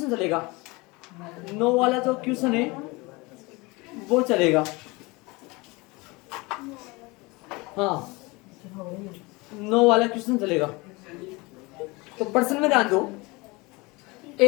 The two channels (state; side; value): quieter; right; 24.6 dB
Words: चलेगा। 9 वाला जो क्वेश्चन है वो चलेगा। हाँ 9 वाला क्वेश्चन चलेगा। तो प्रश्न में ध्यान दो।